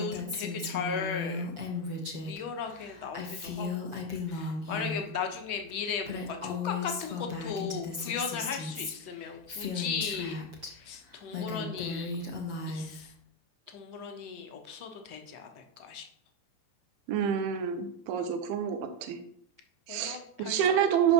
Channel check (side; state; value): left; late; 7.1 ms